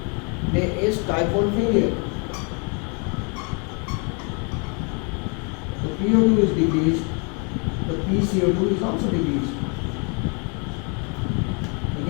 there is type 1 failure. The PO2 is decreased, the PCO2 is also decreased.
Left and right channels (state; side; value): quieter; right; 35.5 dB